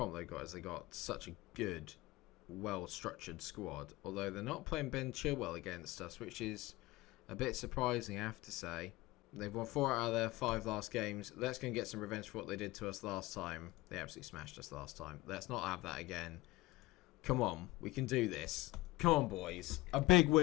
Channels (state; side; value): quieter; right; 19.7 dB